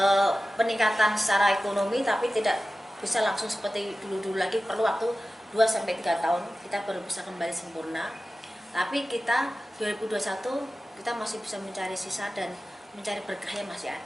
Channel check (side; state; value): both; normal; correlation 0.95